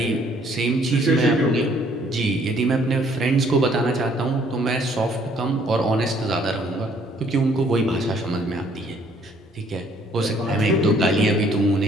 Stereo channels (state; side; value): normal; both; correlation 0.62